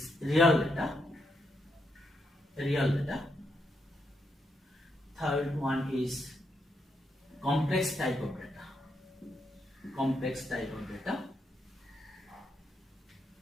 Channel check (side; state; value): both; normal; correlation 0.80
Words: real data. Third one is complex type of data.